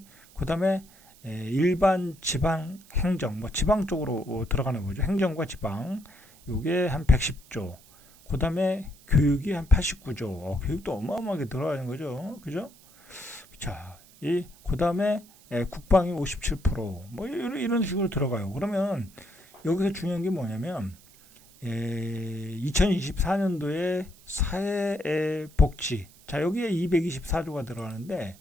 그 다음에 일반 지방 행정, 뭐 지방 쪽으로 들어가는 거죠. 행정과 지방. 요게 한 110조. 그 다음에 교육이 한 89조. 교육도 어마어마하게 들어가는 거죠. 그죠? 자, 그 다음에 국방이 57%, 뭐 이런 식으로 들어가요. 그러면 여기서 중요한 게 뭐냐면 2024년도에 사회복지, 자, 여기에 224조가 들어가는데,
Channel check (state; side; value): noise; right; hiss, 25 dB below the sound